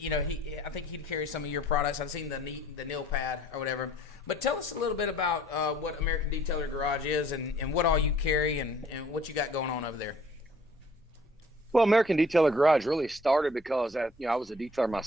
he'd carry some of your products. I've seen the nail pad or whatever. But tell us a little bit about what American Detailer Garage is and what all you carry and what you got going on over there. Well, American Detailer Garage really started because I was a detailer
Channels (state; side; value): normal; both; correlation 0.56